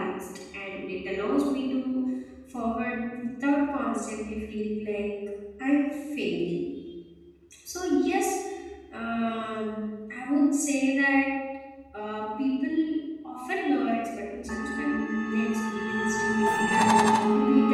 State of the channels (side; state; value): both; identical; correlation 1.00